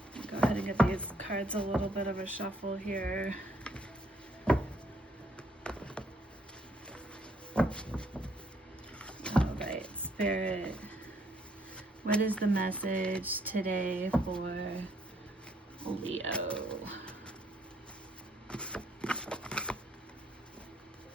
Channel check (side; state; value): both; normal; correlation 0.68